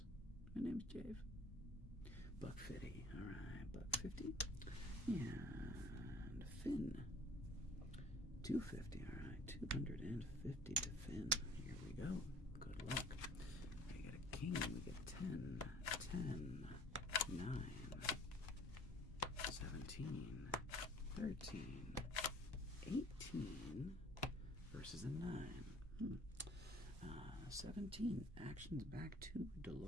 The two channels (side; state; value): both; normal; correlation 0.51